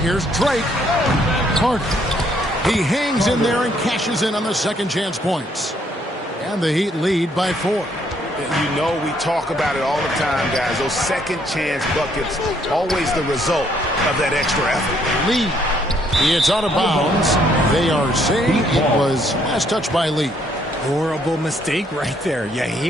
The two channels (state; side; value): normal; both; correlation 0.68